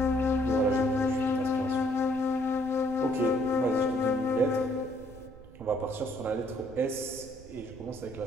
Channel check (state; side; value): noise; right; rumble, 20 dB below the sound